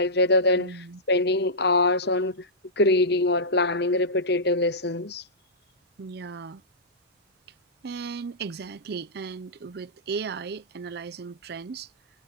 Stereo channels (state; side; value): normal; both; correlation -0.15